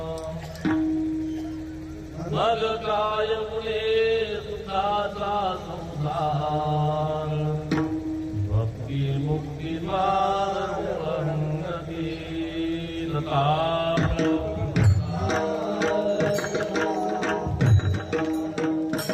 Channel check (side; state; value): both; identical; correlation 1.00